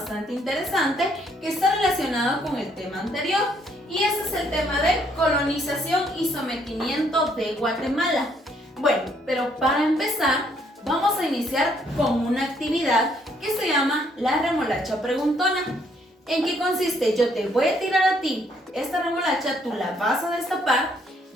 interesante que está relacionado con el tema anterior, y ese es el tema de colonización y sometimiento de Guatemala. Bueno, pero para empezar vamos a iniciar con una actividad que se llama la remolacha preguntona. ¿En qué consiste? Yo te voy a tirar a ti esta remolacha, tú la vas a destapar,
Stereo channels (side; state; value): both; normal; correlation 0.68